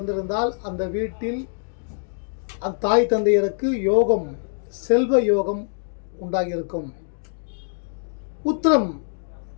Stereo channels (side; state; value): right; silent; digital silence